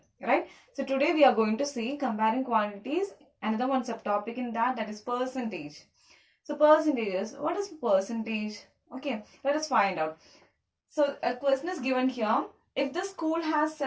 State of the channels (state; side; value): identical; both; correlation 1.00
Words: right? So today we are going to see comparing quantities, another one subtopic in that is percentage. So percentages, what is percentage? Okay, let us find out. So a question is given here. If the school has